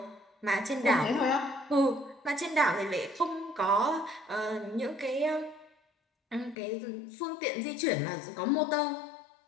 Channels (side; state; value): right; drops out; at 6.6 s